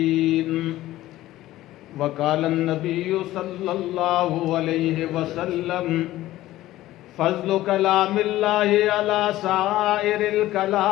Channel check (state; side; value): quieter; right; 15.5 dB